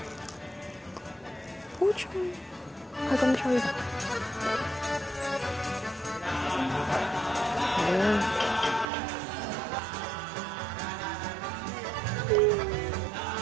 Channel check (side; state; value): left; drops out; at 8.8 s